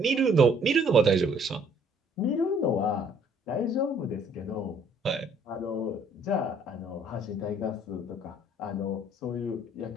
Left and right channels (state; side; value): normal; both; correlation 0.61